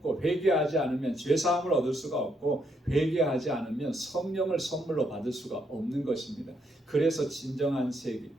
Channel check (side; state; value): both; normal; correlation 0.76